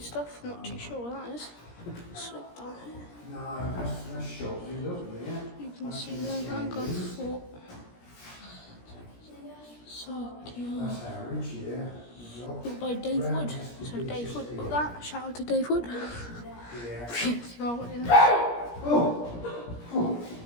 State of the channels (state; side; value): late; right; 17 ms